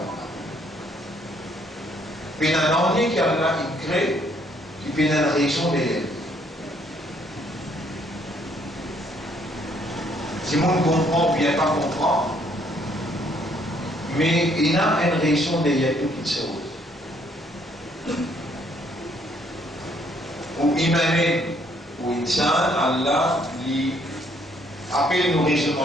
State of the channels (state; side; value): normal; both; correlation 0.67